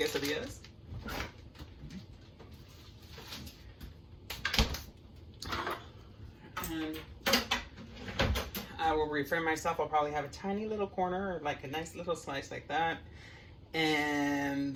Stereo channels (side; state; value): both; identical; correlation 1.00